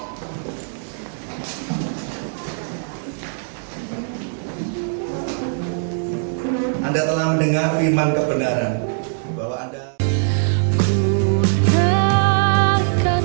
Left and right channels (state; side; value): silent; left; digital silence